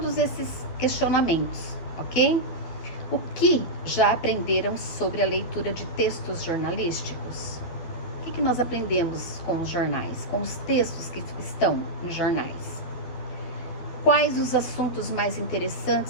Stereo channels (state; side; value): late; right; 12 ms